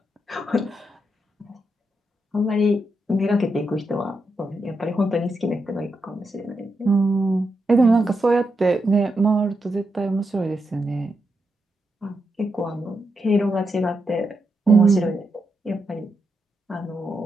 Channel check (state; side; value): normal; both; correlation 0.84